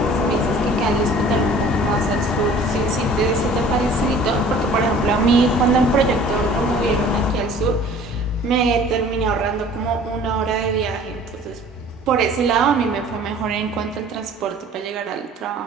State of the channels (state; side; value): normal; both; correlation 0.49